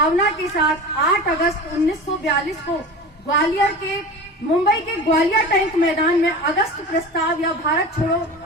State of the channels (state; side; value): normal; both; correlation 0.32